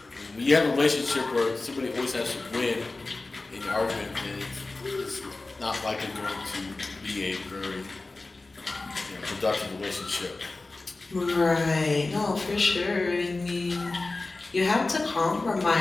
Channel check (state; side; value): quieter; right; 3.3 dB